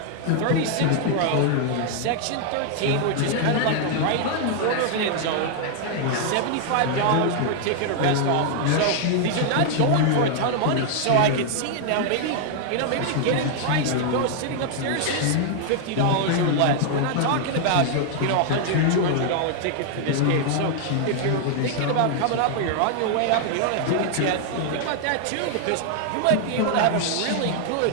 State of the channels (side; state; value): both; different; correlation 0.00